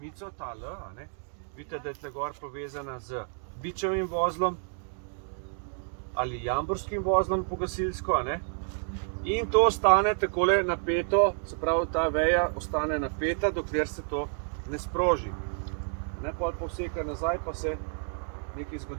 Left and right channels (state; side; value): silent; left; 58 dB below the other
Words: ta L, a ne? Vidite, da je tle gor povezana z bičevim vozlom. ali jamborskim vozlom po gasilsko, a ne? In to ostane takole napeto, se pravi, ta veja ostane napeta, dokler se to ne sproži. Ne, pol povseka nazaj, pa se nekaj